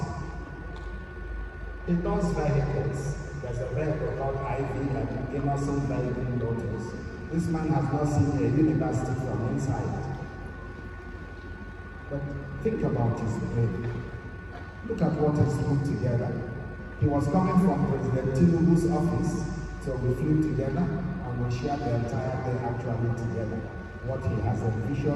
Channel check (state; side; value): identical; both; correlation 1.00